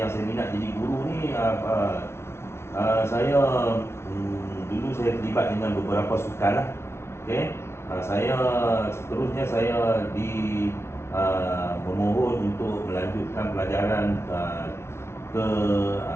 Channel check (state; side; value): late; right; 0.12 ms